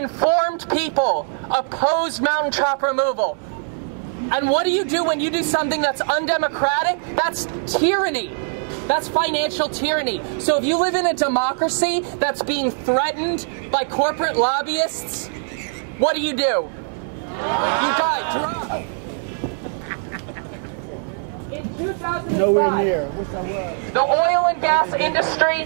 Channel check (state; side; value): silent; left; digital silence